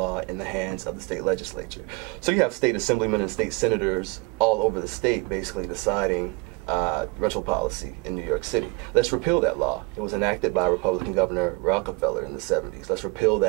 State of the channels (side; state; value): left; quieter; 27.5 dB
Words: in the hands of the state legislature. So you have state assemblymen and state senators all over the state basically deciding rental policy in New York City. Let's repeal that law. It was enacted by Republican Governor Rockefeller in the 70s. Let's repeal